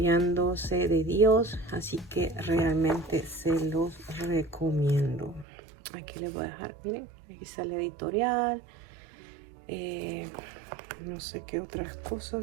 de Dios. Así que realmente se los recomiendo. Aquí les voy a dejar, miren, aquí sale editorial, no sé qué otras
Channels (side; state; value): left; drops out; at 5.5 s